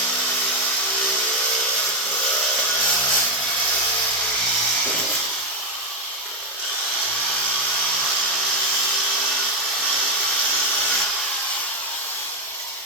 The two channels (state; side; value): normal; both; correlation 0.05